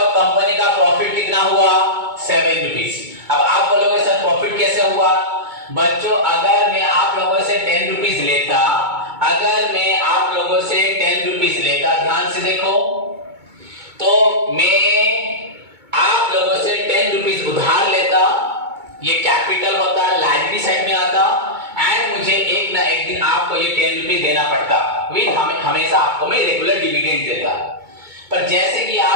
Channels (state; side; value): late; left; 2.2 ms